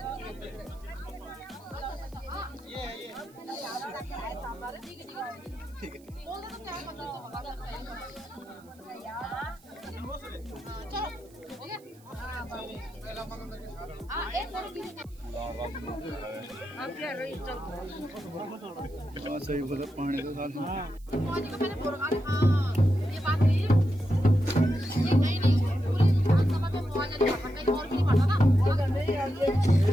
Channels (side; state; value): right; noise; hiss, 28 dB below the sound